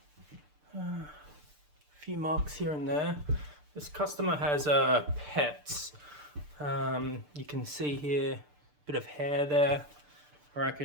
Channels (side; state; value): left; late; 6.8 ms